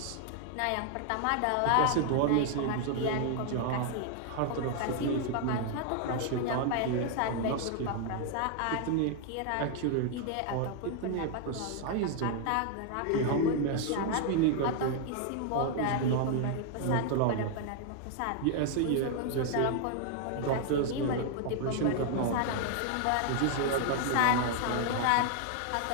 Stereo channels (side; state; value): both; different; correlation 0.00